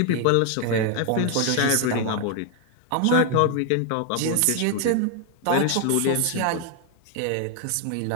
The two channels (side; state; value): both; different; correlation 0.00